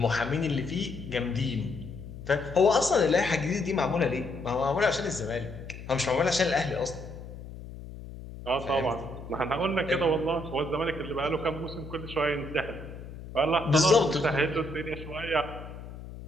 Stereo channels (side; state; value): left; noise; hum, 13 dB below the sound